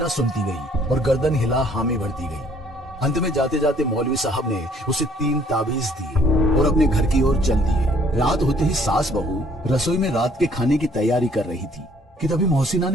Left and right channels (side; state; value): both; normal; correlation 0.61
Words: सुनती गई और गर्दन हिला हामी भरती गई। अंत में जाते जाते मौलवी साहब ने उसे 3 ताबीज दिए और अपने घर की ओर चल दिए। रात होते ही सास बहू रसोई में रात के खाने की तैयारी कर रही थी कि तभी मोहसिना